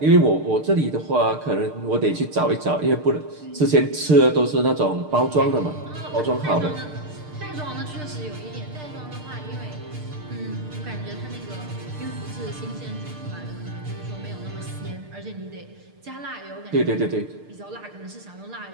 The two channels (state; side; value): late; left; 6.6 ms